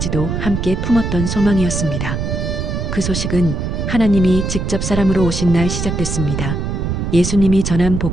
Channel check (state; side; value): noise; right; rumble, 2 dB below the sound